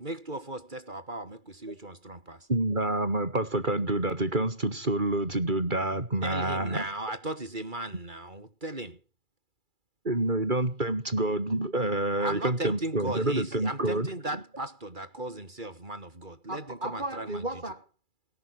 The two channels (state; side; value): late; left; 2.3 ms